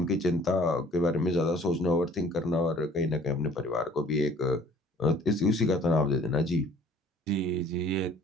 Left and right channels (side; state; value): both; normal; correlation 0.54